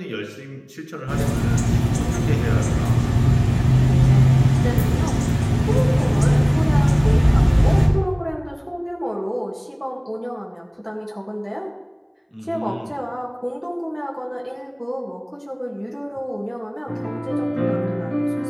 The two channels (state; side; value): identical; both; correlation 1.00